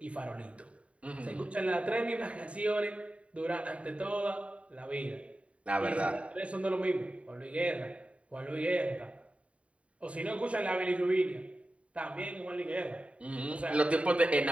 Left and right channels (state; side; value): late; left; 0.064 ms